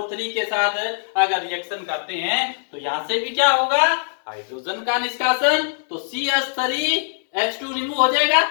के साथ अगर रिएक्शन करते हैं तो यहां से भी क्या होगा, हाइड्रोजन का निष्कासन। तो CH3H2 रिमूव हो जाएगा,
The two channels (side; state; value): right; silent; 65 dB below the other